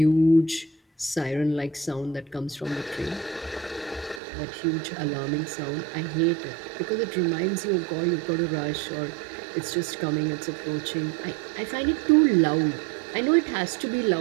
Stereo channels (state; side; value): drops out; left; at 4.2 s